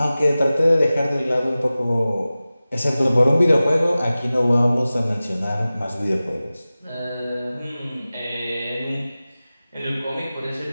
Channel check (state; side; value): inverted; both; correlation -0.96